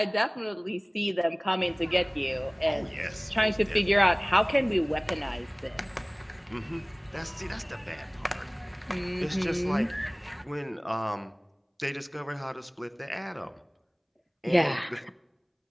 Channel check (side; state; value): both; identical; correlation 1.00